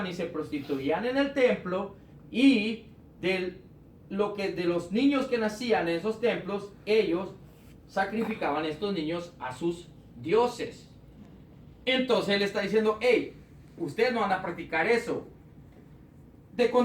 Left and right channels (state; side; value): identical; both; correlation 1.00